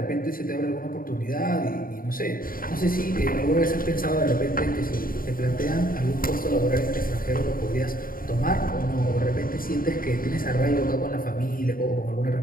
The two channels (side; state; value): right; late; 0.41 ms